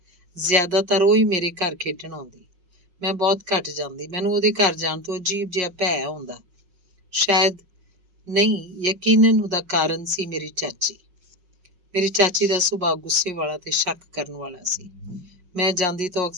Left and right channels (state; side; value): late; left; 5.5 ms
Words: ਜ਼ਿਆਦਾਤਰ ਉਹ ਹੀ ਮੇਰੇ ਘਰ ਖੇਡਣ ਆਉਂਦੀ। ਮੈਂ ਬਹੁਤ ਘੱਟ ਜਾਂਦੀ। ਮੈਨੂੰ ਉਹਦੇ ਘਰ ਜਾਣ ਤੋਂ ਅਜੀਬ ਜਿਹਾ ਭੈ ਹੁੰਦਾ। ਸ਼ਾਇਦ ਨਹੀਂ, ਯਕੀਨਨ ਉਹਦਾ ਕਾਰਨ ਸੀ ਮੇਰੀ ਚਾਚੀ। ਮੇਰੀ ਚਾਚੀ ਦਾ ਸੁਭਾਅ ਗੁੱਸੇ ਵਾਲਾ ਤੇ ਸ਼ੱਕ ਕਰਨ ਵਾਲਾ ਸੀ। ਮੈਂ ਜਾਂਦੀ ਤਾਂ